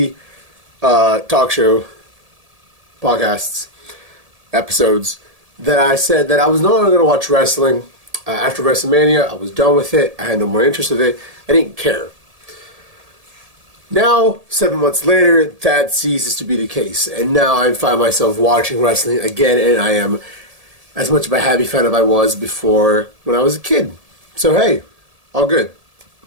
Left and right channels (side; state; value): left; late; 1.7 ms